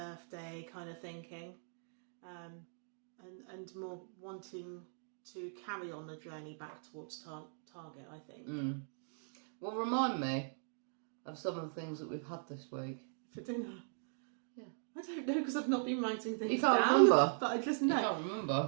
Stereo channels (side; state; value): left; silent; digital silence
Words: kind of thinking, and more wanting to carry on the journey back towards target, I think. Well, remind me of some of the things that we've had this week. For dinner? Yeah. I don't know because I've not been writing things You can't down. remember? But I just know. You can't